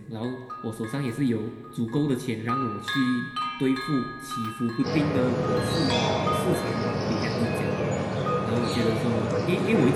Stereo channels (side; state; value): both; identical; correlation 1.00